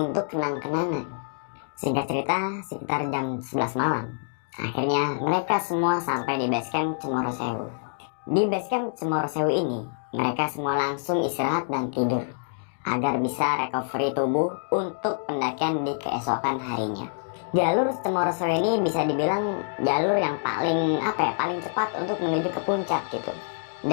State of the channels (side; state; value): right; silent; digital silence